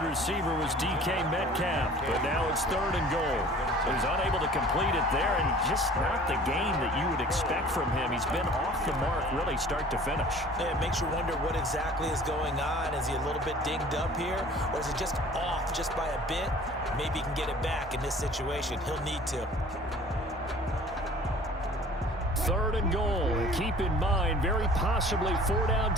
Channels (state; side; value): normal; both; correlation 0.48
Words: receiver was DK Metcalf, but now it's 3rd and goal. So he's unable to complete it there, and just not the game that you would expect from him. He's been off the mark really start to finish. Yeah, it makes you wonder what exactly is going on. Is he a little bit dinged up here, or is it just off just by a bit? Maybe he can get it back in this situation. He'll need to. 3rd and goal. Keep in mind, very possibly 4-down